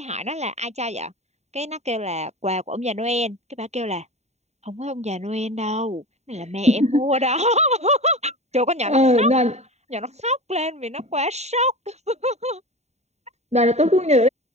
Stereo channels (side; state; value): left; late; 0.32 ms